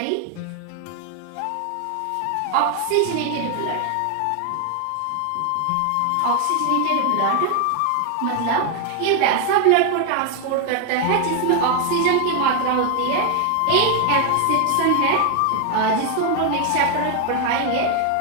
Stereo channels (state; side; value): different; both; correlation 0.01